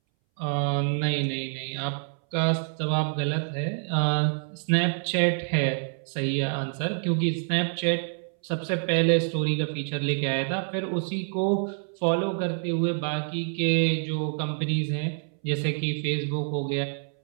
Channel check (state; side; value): silent; left; 60 dB below the other